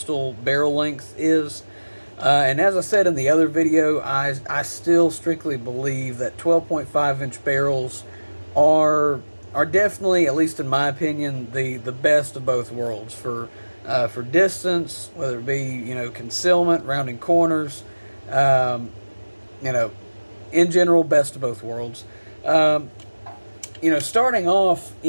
barrel length is. And as I said in the other video, I still strictly believe that 12.5 inch barrels are definitely, at least in my opinion, the best of both worlds for distance, whether it be concealment, rounding corners, you know, in general, best of both worlds. Starting off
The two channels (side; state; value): both; inverted; correlation -1.00